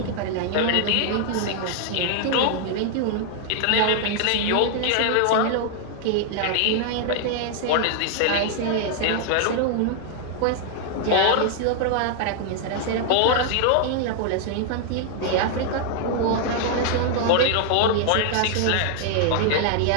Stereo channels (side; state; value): both; different; correlation 0.00